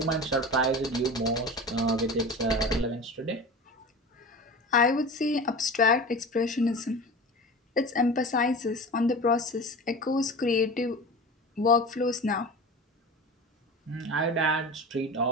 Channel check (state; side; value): normal; both; correlation 0.33